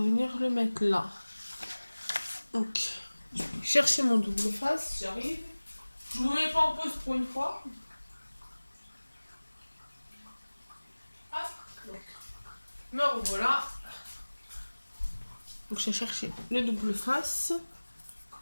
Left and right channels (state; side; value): inverted; both; correlation -1.00